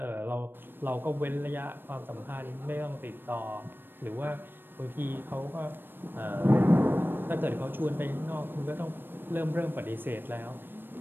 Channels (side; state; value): left; late; 0.096 ms